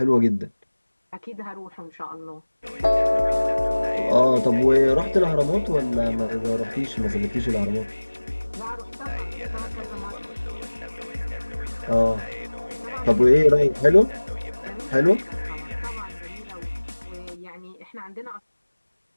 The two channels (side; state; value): both; inverted; correlation -1.00